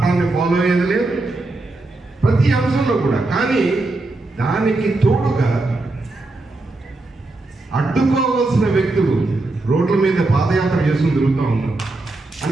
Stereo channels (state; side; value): quieter; left; 3.0 dB